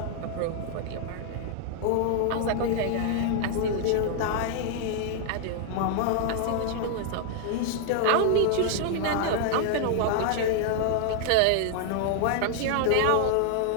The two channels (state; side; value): different; both; correlation 0.00